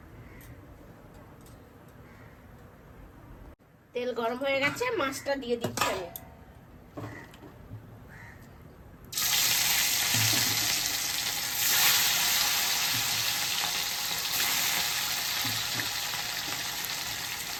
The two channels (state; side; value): identical; both; correlation 1.00